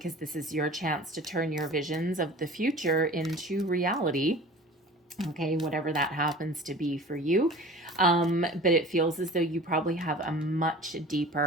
this is your chance to turn your visions of the future into reality. Okay, whatever that happens to be for you. But it feels as though you probably have a much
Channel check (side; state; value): both; normal; correlation 0.41